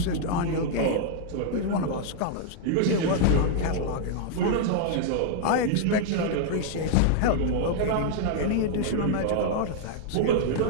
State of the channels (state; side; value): different; both; correlation -0.01